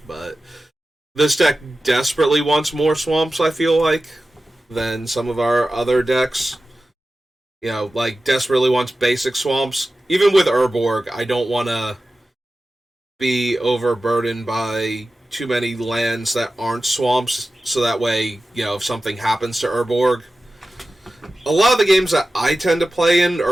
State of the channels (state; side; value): normal; both; correlation 0.94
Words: but this deck desperately wants more swamps, I feel like, than some of our other decks. You know, like, desperately wants basic swamps. Even with Urborg, I don't want to be overburdened by too many lands that aren't swamps, so that way, you know, if something happens to Urborg... A lot of the games that I tend to play in,